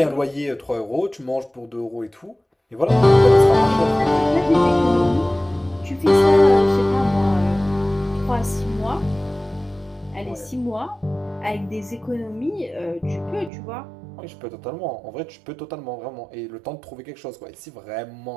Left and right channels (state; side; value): drops out; left; at 13.5 s